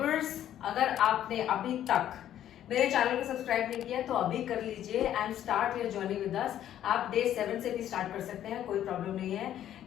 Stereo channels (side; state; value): right; quieter; 11.3 dB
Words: अगर आपने अभी तक मेरे चैनल को सब्सक्राइब नहीं किया तो अभी कर लीजिए and start your journey with us. आप डे 7 से भी स्टार्ट कर सकते हैं, कोई प्रॉब्लम नहीं है।